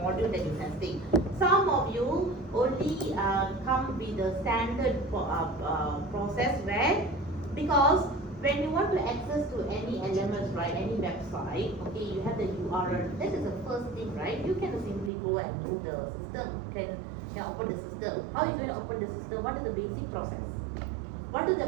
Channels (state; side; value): drops out; left; at 15.1 s